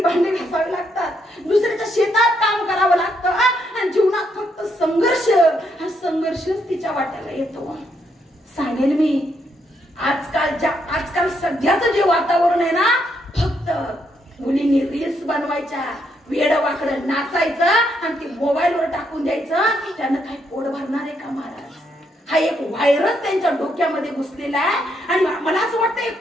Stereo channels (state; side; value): normal; both; correlation 0.76